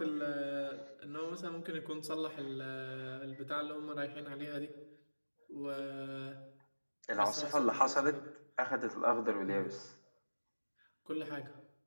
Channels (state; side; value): inverted; both; correlation -1.00